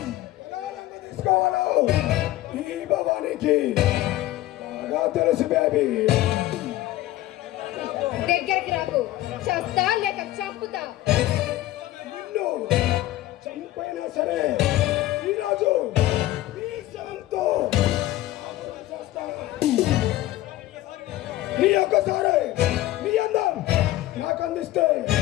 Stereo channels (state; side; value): quieter; right; 15.7 dB